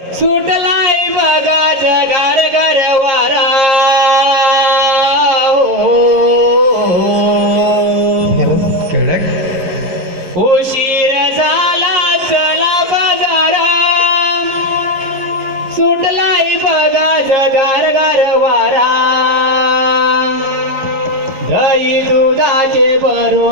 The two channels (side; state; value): left; late; 11 ms